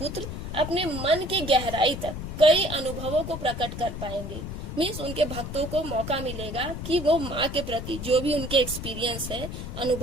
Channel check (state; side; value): noise; left; rumble, 7 dB below the sound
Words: अपने मन की गहराई तक कई अनुभवों को प्रकट कर पाएंगे। मीन्स उनके भक्तों को मौका मिलेगा कि वो माँ के प्रति जो भी उनके एक्सपीरियंस है,